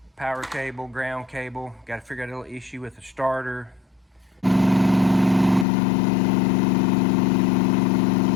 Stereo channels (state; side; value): drops out; right; at 5.7 s